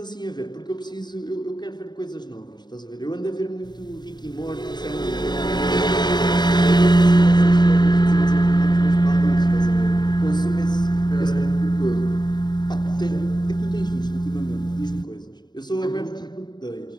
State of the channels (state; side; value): late; right; 0.21 ms